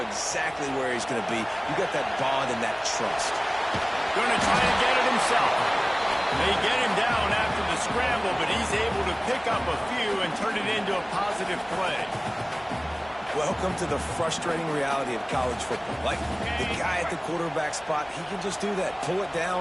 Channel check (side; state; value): both; identical; correlation 1.00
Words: exactly where he's going to be. You got that bond and that trust. Going to try and get it himself. They get him down after the scramble, but he's able to pick up a few and turn it into a positive play. Welcome to the frustrating reality of college football. Like, the guy at the quarterback spot, he can just do that. Pull it